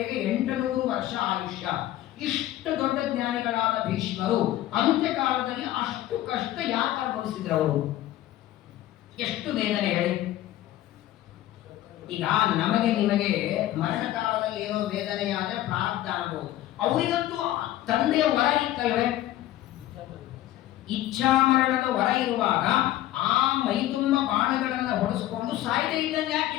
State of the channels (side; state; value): right; quieter; 14.2 dB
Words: 800 ವರ್ಷ ಆಯುಷ್ಯ, ಇಷ್ಟು ದೊಡ್ಡ ಜ್ಞಾನಿಗಳಾದ ಭೀಷ್ಮರು ಅಂತ್ಯಕಾಲದಲ್ಲಿ ಅಷ್ಟು ಕಷ್ಟ ಯಾಕೆ ಅನುಭವಿಸಿದ್ರು, ಅವರು ಎಷ್ಟು ವೇದನೆ ಹೇಳಿ. ಈಗ ನಮಗೆ ನಿಮಗೆ ಮರಣ ಕಾಲದಲ್ಲಿ ಏನೋ ವೇದನೆ ಆದ್ರೆ ಪ್ರಾರಬ್ಧ ಅನ್ಬೋದು, ಅವರಿಗಂತೂ ತಂದೆಯ ವರ ಇತ್ತಲ್ವೇ, ಇಚ್ಛಾ ಮರಣದ ವರ ಇರುವಾಗ ಆ ಮೈತುಂಬ ಬಾಣಗಳನ್ನ ಹೊಡೆಸ್ಕೊಂಡು ಸಾಯ್ದೆ ಇದ್ದಂಗೆ